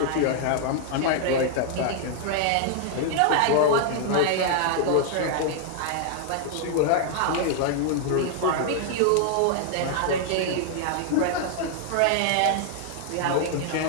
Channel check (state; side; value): different; both; correlation 0.00